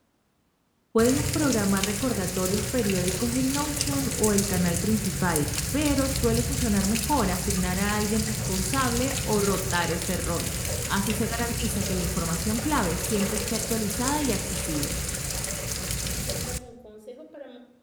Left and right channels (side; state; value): both; identical; correlation 1.00